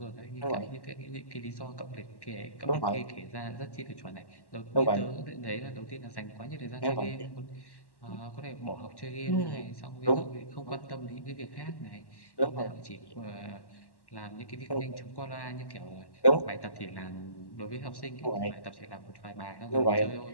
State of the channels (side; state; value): right; late; 1.1 ms